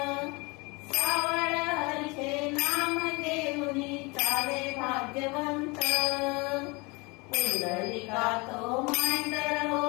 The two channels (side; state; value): right; quieter; 26.9 dB